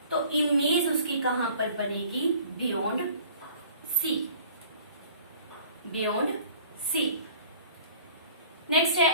तो इमेज उसकी कहां पर बनेगी? Beyond C. Beyond C. Next है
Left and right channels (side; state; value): both; inverted; correlation -0.49